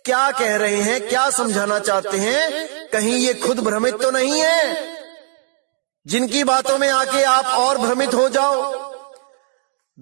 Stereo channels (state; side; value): silent; left; 56 dB below the other